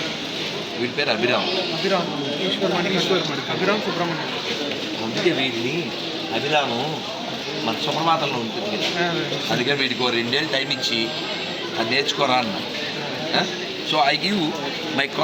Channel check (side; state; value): both; identical; correlation 1.00